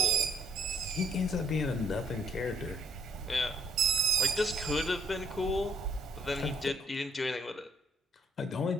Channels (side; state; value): both; normal; correlation 0.66